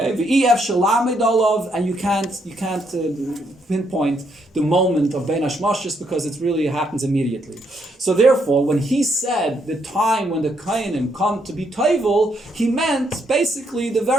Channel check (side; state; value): both; normal; correlation 0.75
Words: v'ef shalamid olav, and you can't pinpoint the moment of ben hashmoshes because it really happens immediately. So therefore, when he said the time when the kohanim come to be tovel, he meant basically the